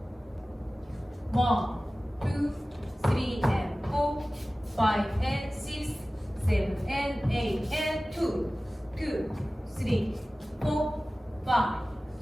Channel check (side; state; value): both; normal; correlation 0.97